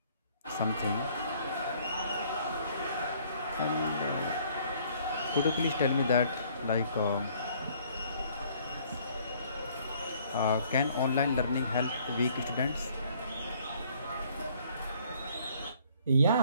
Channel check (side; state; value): both; inverted; correlation -0.61